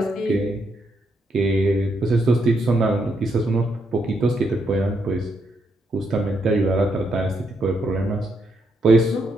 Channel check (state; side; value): normal; both; correlation 0.78